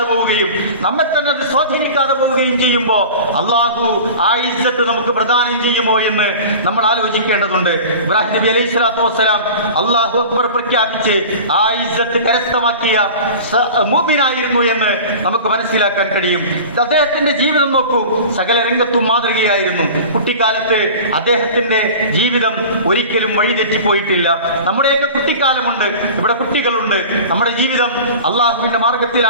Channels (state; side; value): inverted; both; correlation -0.37